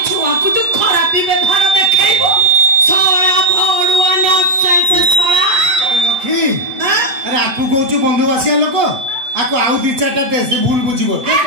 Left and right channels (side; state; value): left; late; 8.1 ms